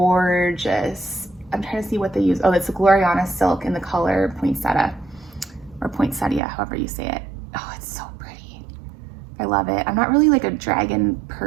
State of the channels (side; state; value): left; drops out; at 6.4 s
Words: I'm trying to see what they use. Oh, it's a Gloriana silk in the color Poinsettia, or Poinsettia, however you say it. Oh, it's so pretty. I love it. I'm not really like a dragon